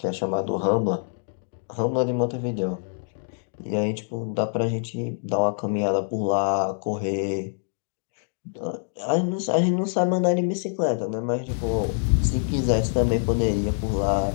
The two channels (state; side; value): silent; right; digital silence